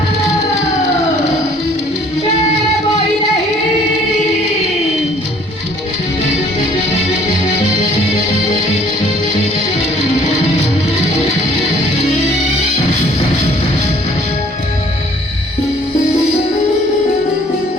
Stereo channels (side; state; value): both; normal; correlation 0.57